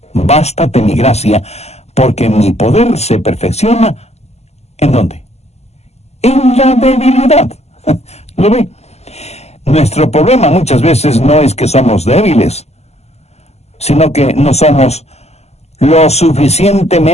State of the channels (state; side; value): late; right; 0.31 ms